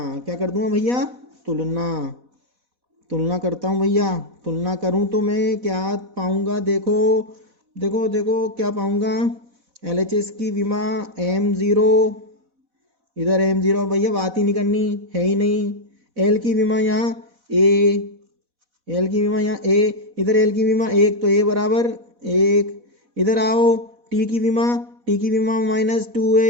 क्या कर दूंगा भैया? तुलना करता हूं भैया। तुलना करूं तो मैं क्या पाऊंगा? देखो देखो देखो क्या पाऊंगा? LHS की विमा m0, इधर m0 भैया, बात ही नहीं करनी है ही नहीं। L की विमा यहाँ a, L की विमा यहाँ a, इधर L की विमा 1, तो a बराबर 1। इधर आओ T की विमा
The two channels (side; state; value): left; late; 4.1 ms